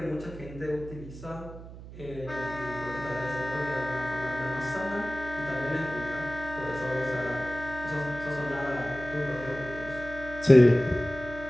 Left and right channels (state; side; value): noise; right; hum, 14 dB below the sound